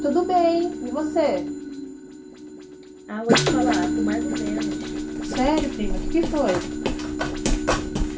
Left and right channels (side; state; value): both; identical; correlation 1.00